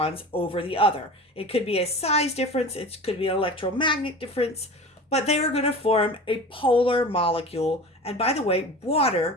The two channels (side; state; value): both; normal; correlation 0.35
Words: over the other. It could be a size difference, it could be an electromagnetic difference, but they are going to form a polar molecule. And by the way,